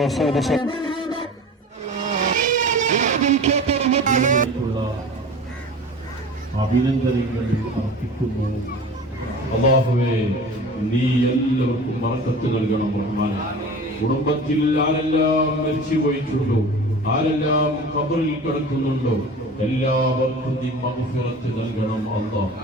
അഭിനന്ദനങ്ങൾ അർപ്പിക്കുന്നു. അല്ലാഹുവേ, നീ എല്ലാവർക്കും ബർക്കത്ത് നൽകണം റഹ്മാൻ. കുടുംബത്തിൽ ആരെല്ലാം മരിച്ചു പോയിട്ടുണ്ടോ, ആരെല്ലാം ഖബറിൽ കിടക്കുന്നുണ്ടോ, എല്ലാവർക്കും നീ മഗ്ഫിറത്ത് നൽകണം അല്ലാഹ്.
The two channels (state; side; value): normal; both; correlation 0.38